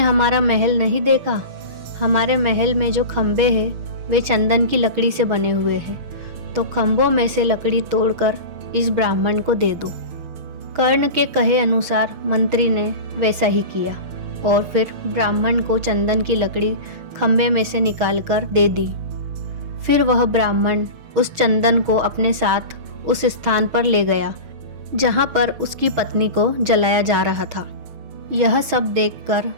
महल नहीं देखा? हमारे महल में जो खंबे हैं वे चंदन की लकड़ी से बने हुए हैं, तो खंभों में से लकड़ी तोड़कर इस ब्राह्मण को दे दो। कर्ण के कहे अनुसार मंत्री ने वैसा ही किया और फिर ब्राह्मण को चंदन की लकड़ी खंबे में से निकालकर दे दी। फिर वह ब्राह्मण उस चंदन को अपने साथ उस स्थान पर ले गया जहाँ पर उसकी पत्नी को जलाया जा रहा था। यह सब देखकर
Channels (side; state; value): left; late; 6.2 ms